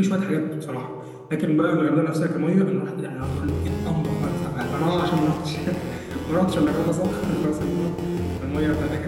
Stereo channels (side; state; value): both; identical; correlation 1.00